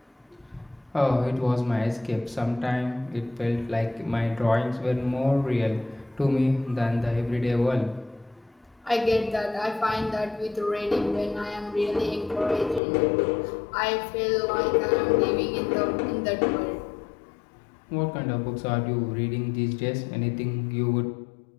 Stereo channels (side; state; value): right; drops out; at 12.8 s